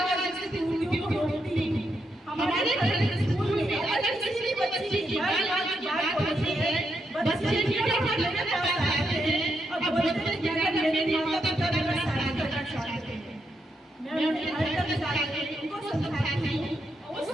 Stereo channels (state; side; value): normal; both; correlation 0.81